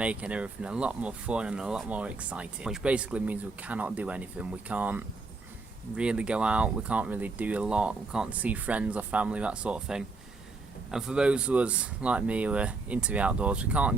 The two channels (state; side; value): quieter; left; 3.7 dB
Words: everything a lot more fun and a lot more exciting. Which basically means we cannot do anything. We can't really go out, we can't really do a lot, we can't see friends or family, that sort of thing. And for those of us like me who are into the outdoors, we can't